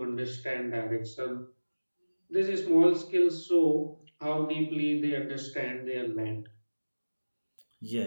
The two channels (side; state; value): both; inverted; correlation -1.00